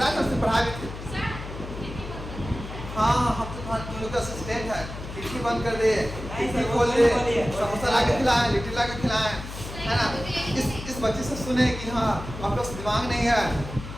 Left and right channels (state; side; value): noise; left; hum, 10 dB below the sound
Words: है सबसे पढ़ा भी थे। हाँ, हम तो तुम लोग का असिस्टेंट है। खिड़की बंद कर दे, खिड़की खोल दे, समोसा ला के खिलाएं, लिट्टी ला के खिलाएं, है ना? इस बच्चे से सुने कि हाँ आप लोग दिमाग नहीं है।